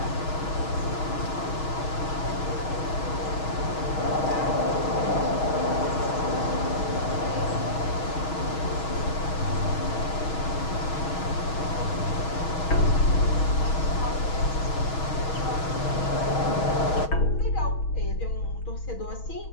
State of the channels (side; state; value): right; late; 6.3 ms